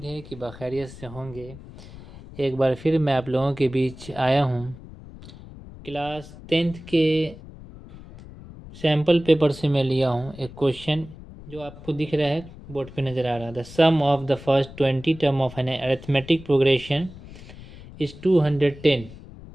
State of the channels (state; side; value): noise; left; rumble, 17 dB below the sound